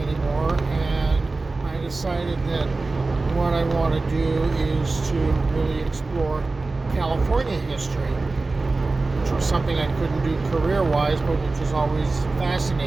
and I decided that what I want to do is to really explore California history, which was something I couldn't do career-wise, but which has always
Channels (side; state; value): left; quieter; 3.5 dB